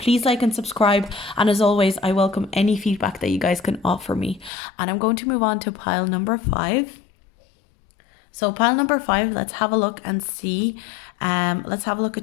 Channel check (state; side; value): drops out; right; at 4.5 s